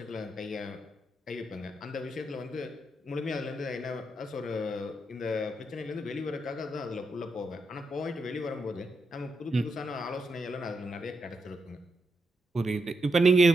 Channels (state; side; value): normal; both; correlation 0.83